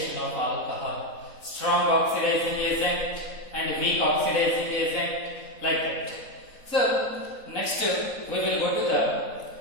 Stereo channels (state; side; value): late; right; 4.0 ms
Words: of alcohol, strong oxidizing agent and weak oxidizing agent, like that. So next we will go to the